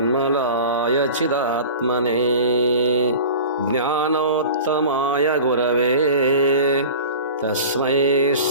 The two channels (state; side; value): inverted; both; correlation -0.37